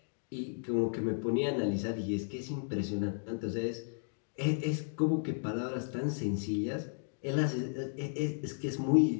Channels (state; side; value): silent; right; digital silence